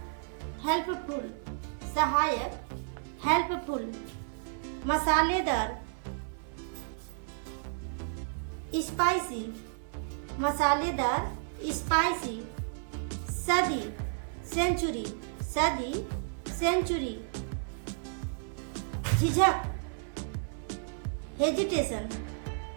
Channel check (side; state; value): left; silent; 56 dB below the other